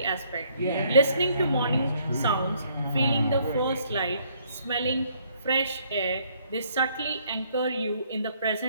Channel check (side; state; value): both; inverted; correlation -0.66